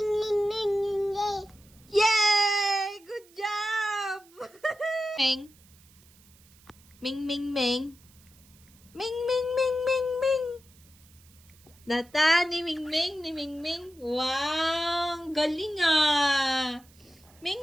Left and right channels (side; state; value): right; noise; hiss, 28 dB below the sound